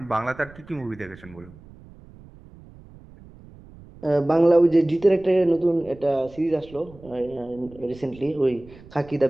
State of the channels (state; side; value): noise; right; rumble, 21 dB below the sound